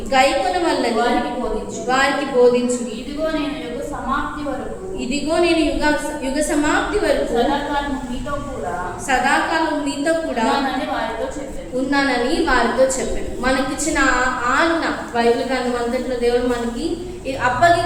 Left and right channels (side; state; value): both; identical; correlation 1.00